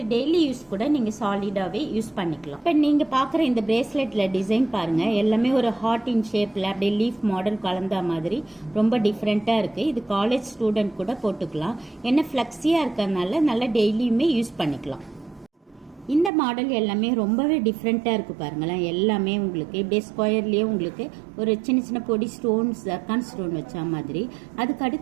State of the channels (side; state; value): left; drops out; at 16.3 s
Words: டெய்லி யூஸ் கூட நீங்கள் சாலிடாகவே யூஸ் பண்ணிக்கலாம். இப்போ நீங்கள் பார்க்குற இந்த பிரேஸ்லெட்டில் டிசைன் பாருங்கள், எல்லாமே ஒரு ஹார்ட் இன் ஷேப்பில் அப்படியே லீஃப் மாடல் கலந்த மாதிரி ரொம்ப டிஃப்ரெண்ட்டாக இருக்குது. இது காலேஜ் ஸ்டூடெண்ட் கூட போட்டுக்கலாம். என்ன ஃப்ளெக்ஸியாக இருக்கிறதுனால நல்லா டெய்லியுமே யூஸ் பண்ணிக்கலாம். இந்த மாடல் எல்லாமே ரொம்பவே டிஃப்ரெண்ட்டாக இருக்குது பாருங்களேன். எல்லாமே உங்களுக்கு இப்படியே ஸ்கொயர்லேயே உங்களுக்கு ஒரு சின்ன சின்ன பொடி ஸ்டோன்ஸ், ஜர்கான் ஸ்டோன் வச்ச மாதிரி. அதுக்கு